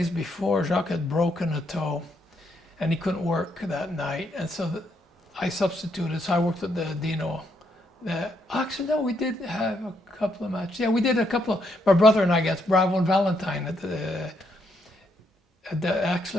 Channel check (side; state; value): both; normal; correlation 0.76